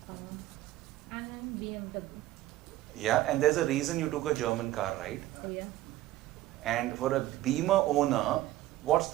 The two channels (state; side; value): quieter; left; 15.5 dB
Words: And then BMW. Yeah, and there's a reason you took a German car, right? Oh yeah. And for a Beamer owner, what's